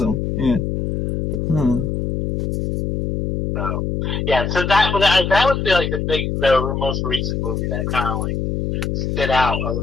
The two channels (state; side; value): noise; left; hum, 1 dB below the sound